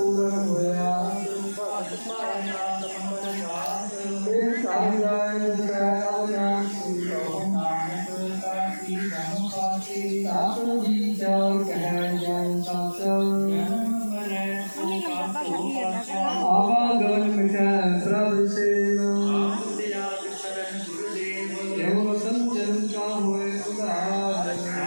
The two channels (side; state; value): both; inverted; correlation -1.00